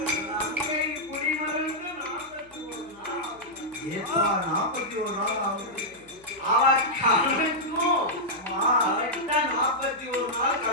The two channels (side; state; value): left; noise; hum, 28 dB below the sound